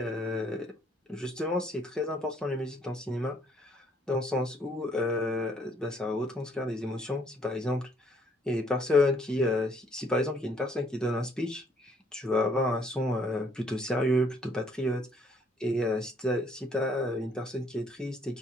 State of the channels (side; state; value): both; normal; correlation 0.65